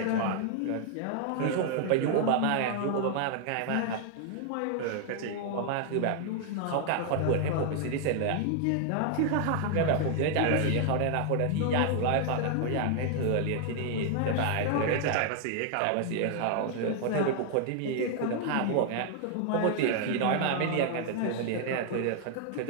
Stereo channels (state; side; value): different; both; correlation 0.00